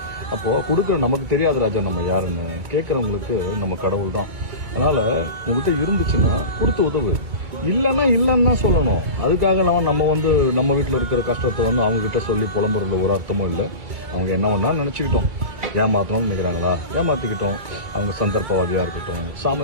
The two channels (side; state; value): left; late; 2.2 ms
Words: அப்போ கொடுக்குற நமக்கு தெரியாது ராஜா நம்ம யாருன்னு, கேட்கறவங்களுக்கு நம்ம கடவுள் தான். அதனால உங்ககிட்ட இருந்துச்சுன்னா கொடுத்து உதவு, இல்லைன்னா இல்லைன்னு தான் சொல்லணும். அதுக்காக நம்ம நம்ம வீட்டில் இருக்கிற கஷ்டத்தை அவங்க கிட்ட சொல்லி புலம்புறதுல ஒரு அர்த்தமும் இல்லை. அவங்க என்ன வேணா நினைச்சுக்கிட்டோம், ஏமாத்தணும்னு நினைக்கிறாங்களா ஏமாத்திக்கிட்டோம். அவங்க சந்தர்ப்பவாதியா இருக்கட்டும்,